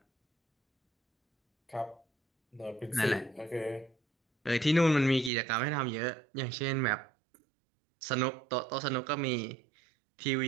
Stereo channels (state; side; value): drops out; left; at 5.3 s